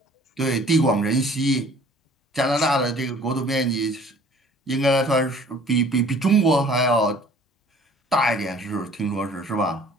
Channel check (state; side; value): normal; both; correlation 0.52